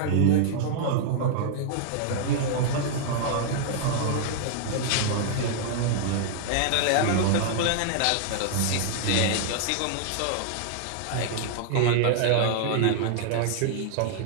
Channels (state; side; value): different; both; correlation -0.01